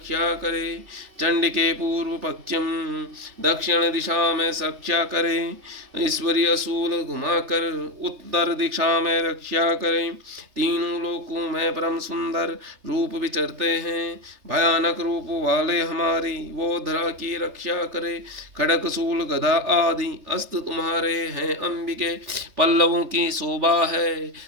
करे। चंडिके पूर्व पश्चिम दक्षिण दिशा में रक्षा करे। ईश्वरी असूल घुमाकर उत्तर दिशा में रक्षा करें। तीनों लोकों में परम सुंदर रूप विचरते हैं। भयानक रूप वाले हमारी वो धरा की रक्षा करे। खड़क शूल गदा आदि अस्त्र तुम्हारे हैं अंबिके। पल्लवों की शोभा है,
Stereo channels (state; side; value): late; left; 3.3 ms